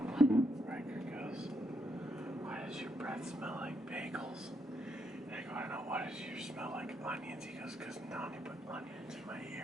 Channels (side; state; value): both; normal; correlation 0.78